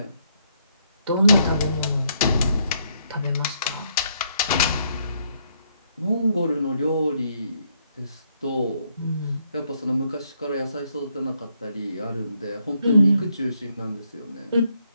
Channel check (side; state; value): both; inverted; correlation -0.73